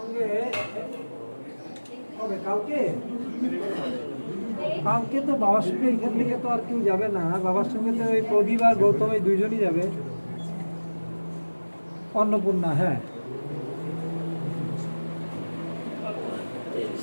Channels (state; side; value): inverted; both; correlation -1.00